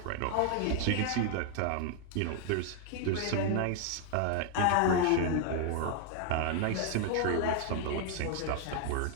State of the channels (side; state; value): both; different; correlation 0.00